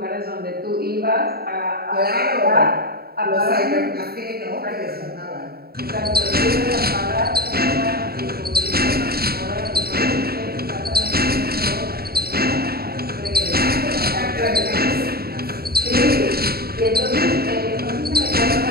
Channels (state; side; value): late; left; 0.45 ms